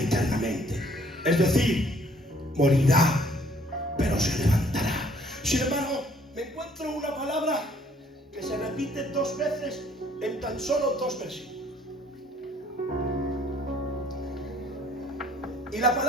Es decir, morirá, pero se levantará. Sin embargo, me encuentro una palabra que se repite 2 veces en tan solo 2 versículos. Y la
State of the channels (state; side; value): normal; both; correlation 0.60